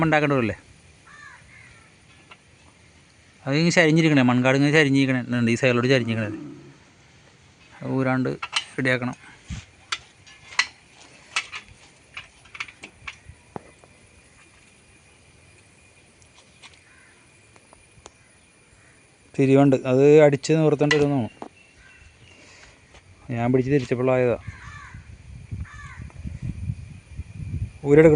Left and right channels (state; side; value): identical; both; correlation 1.00